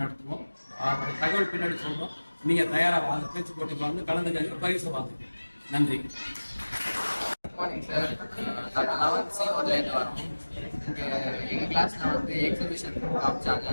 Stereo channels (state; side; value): inverted; both; correlation -1.00